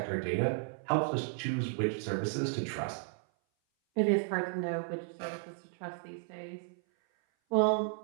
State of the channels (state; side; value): silent; left; 55 dB below the other